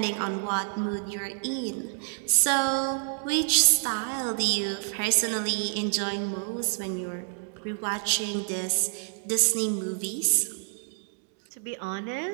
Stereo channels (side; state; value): left; silent; digital silence